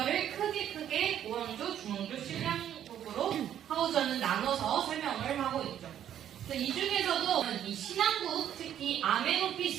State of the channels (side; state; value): left; quieter; 10.4 dB